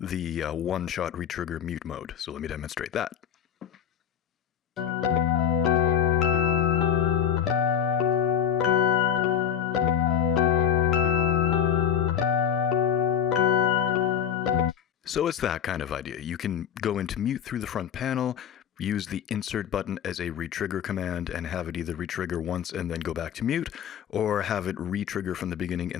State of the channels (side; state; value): right; quieter; 8.9 dB